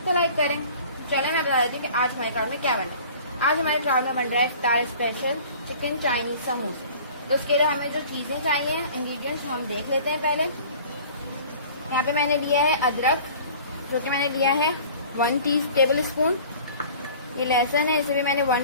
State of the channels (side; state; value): both; inverted; correlation -0.46